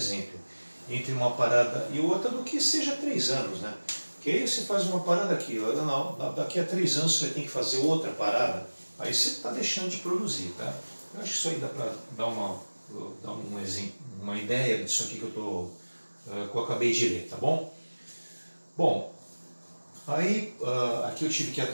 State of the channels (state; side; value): inverted; both; correlation -1.00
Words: entre uma parada e outra, do que seja 3 anos, né? Porque aí você faz uma parada aqui, não, daqui a 3 anos você vai ter que fazer outra parada, aí você está deixando de produzir, tá? Eu acho que isso aí dá para dar um exemplo, uma ideia disso aqui que eu acabei de ler, tá bom? Bom, aí aqui eu tive que